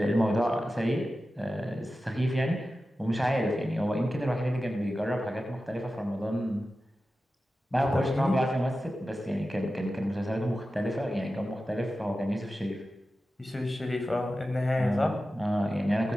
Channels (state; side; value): normal; both; correlation 0.93